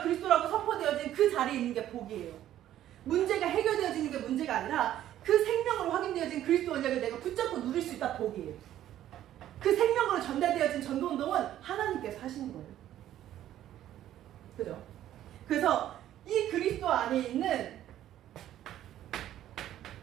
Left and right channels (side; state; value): left; quieter; 12.3 dB